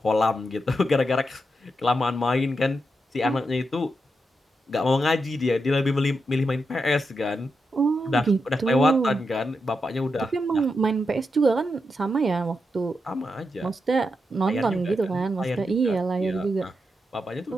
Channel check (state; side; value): normal; both; correlation 0.85